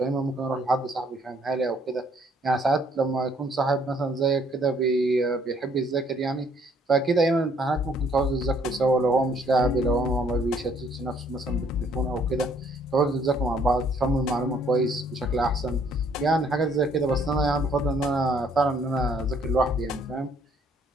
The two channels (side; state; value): both; normal; correlation 0.64